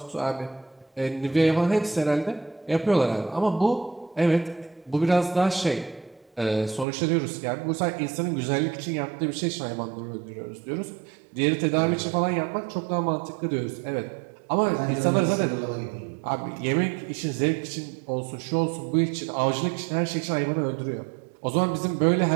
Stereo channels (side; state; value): left; drops out; at 6.9 s